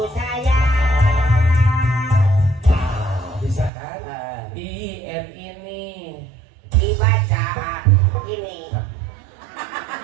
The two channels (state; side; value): drops out; left; at 3.7 s